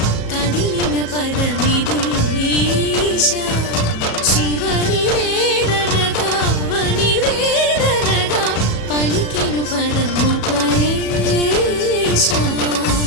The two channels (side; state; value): right; late; 37 ms